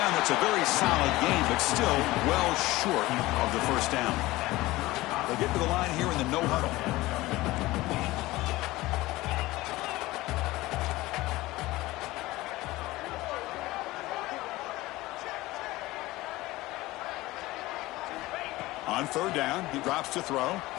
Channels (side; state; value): right; quieter; 18.8 dB